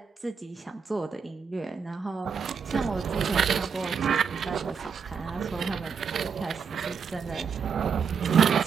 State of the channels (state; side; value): quieter; left; 6.2 dB